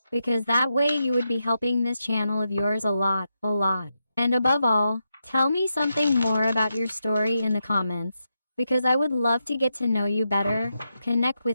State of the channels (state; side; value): inverted; both; correlation -0.85